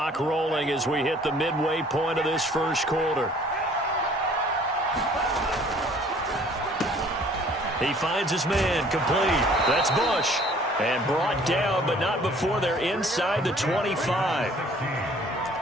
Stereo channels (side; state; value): both; normal; correlation 0.55